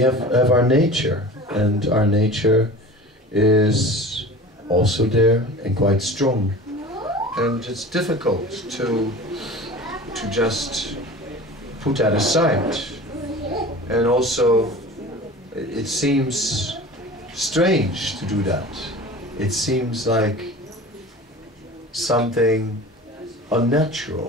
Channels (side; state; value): both; normal; correlation 0.38